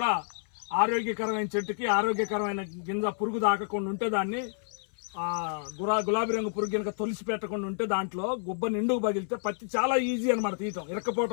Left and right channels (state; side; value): silent; right; 58 dB below the other